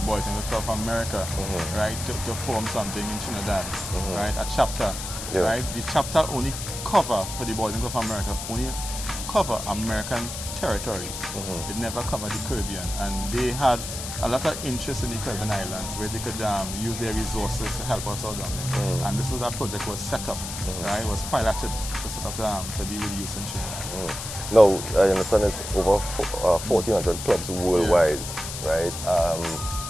Boys and Girls Club of America, right, to form something in Trinidad, right? A chapter, right? The chapter only cover for the Boys and Girls Club of America only cover American territories. It never covered the Caribbean, and they had a lot of interest in the Caribbean islands where they could use their resources to help us out down there. And this is a project was set up, right? It was piloted to set up to deal with youth in Trinidad. Now, I understand it's over 1,400 clubs worldwide, right?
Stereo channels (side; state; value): left; noise; hiss, 7 dB below the sound